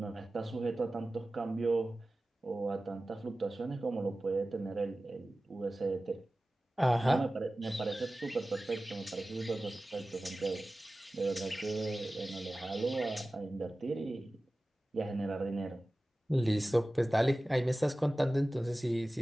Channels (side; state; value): both; normal; correlation 0.96